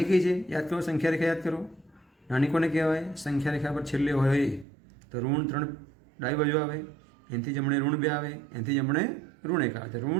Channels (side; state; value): left; drops out; at 4.7 s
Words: કઈ છે યાદ કરો, સંખ્યા રેખા યાદ કરો. નાની કોને કહેવાય? સંખ્યા રેખા પર છેલ્લે હોય તો ઋણ 3 ડાબી બાજુ આવે, એનાથી જમણે ઋણ 2 આવે, એનાથી જમણે ઋણ 1 આવે. તો